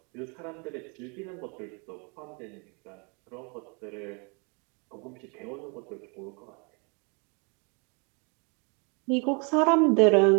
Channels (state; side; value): quieter; left; 33.8 dB